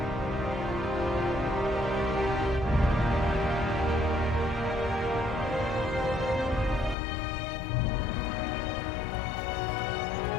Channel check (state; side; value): drops out; right; at 7.0 s